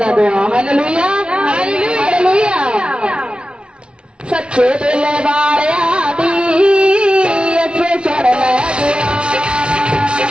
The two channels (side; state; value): left; late; 0.057 ms